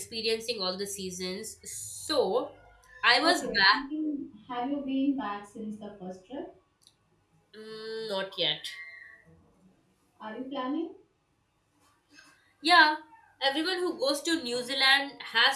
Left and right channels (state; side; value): identical; both; correlation 1.00